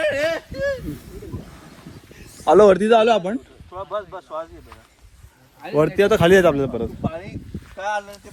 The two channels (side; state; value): both; identical; correlation 1.00